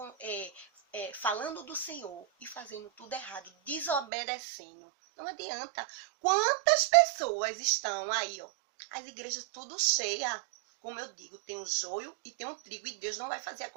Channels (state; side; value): drops out; left; at 4.0 s